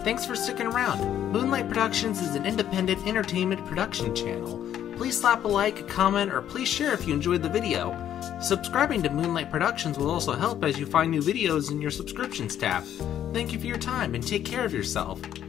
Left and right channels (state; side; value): quieter; right; 10.6 dB